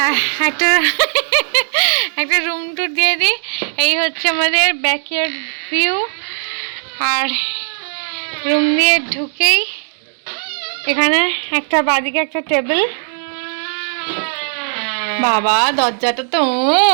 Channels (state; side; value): silent; left; digital silence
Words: একটা রুম টুর দিয়ে দিই। এই হচ্ছে আমাদের ব্যাকইয়ার্ড ভিউ। আর রুম দিয়ে ঢুকেই এখানে একটা বাদিকে একটা টেবিল। বাবা দরজাটা তো